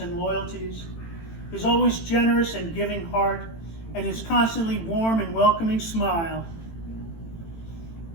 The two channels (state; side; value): late; right; 18 ms